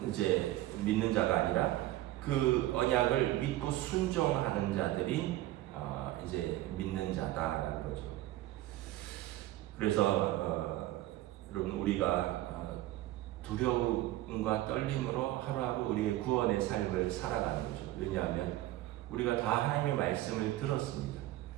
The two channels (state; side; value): quieter; left; 15.8 dB